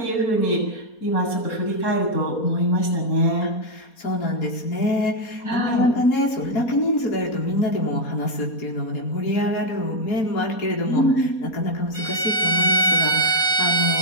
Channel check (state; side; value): late; right; 4.2 ms